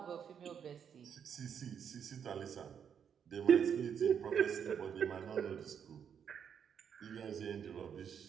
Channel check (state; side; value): quieter; left; 7.8 dB